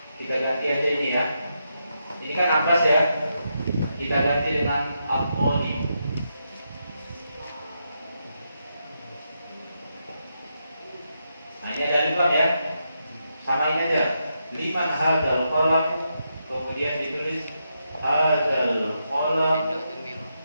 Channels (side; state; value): both; inverted; correlation -0.83